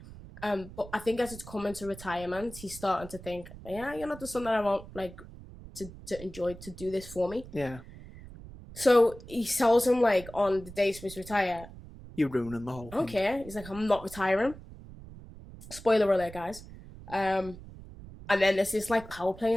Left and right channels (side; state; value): right; noise; rumble, 16 dB below the sound